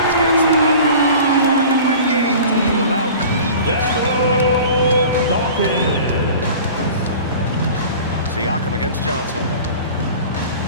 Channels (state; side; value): inverted; both; correlation -0.41